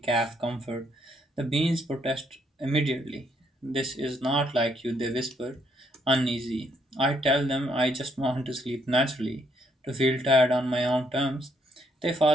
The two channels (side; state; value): both; normal; correlation 0.72